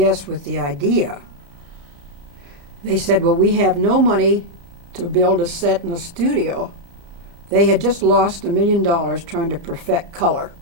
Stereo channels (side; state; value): left; late; 35 ms